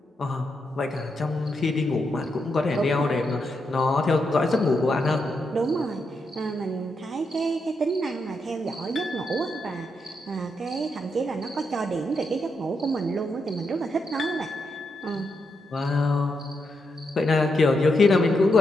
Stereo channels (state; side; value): normal; both; correlation 0.82